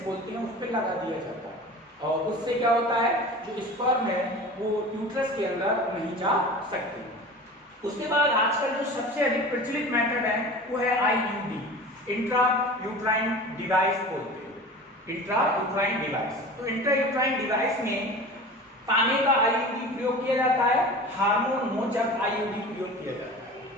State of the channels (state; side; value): normal; both; correlation 0.36